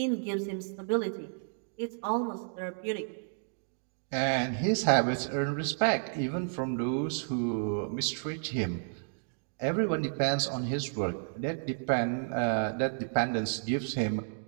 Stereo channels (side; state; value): left; silent; digital silence